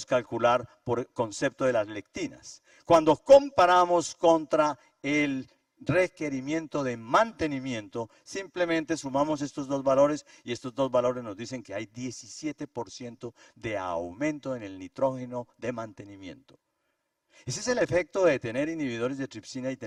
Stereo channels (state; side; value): identical; both; correlation 1.00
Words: calcular por concepto de las lectinas. Cuando comparamos contra el requerimiento de mantenimiento, simplemente sumamos estos dos valores, y estos dos valores nos dicen que hay 17% de aumento en el nitrógeno de mantenimiento. Ese es el efecto de tener inhibidores de tripsina y